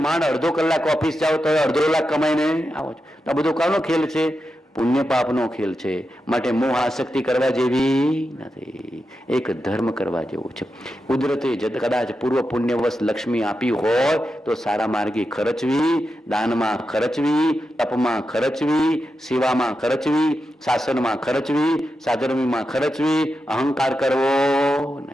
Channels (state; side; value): normal; both; correlation 0.89